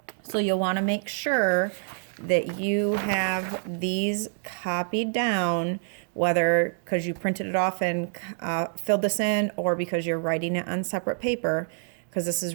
So you'll want to make sure that you have these copied down, whether because you printed it off and filled this in or because you're writing it on separate paper, because this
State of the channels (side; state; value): left; silent; 60 dB below the other